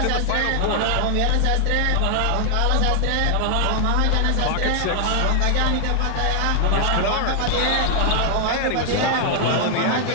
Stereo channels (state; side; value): different; both; correlation 0.00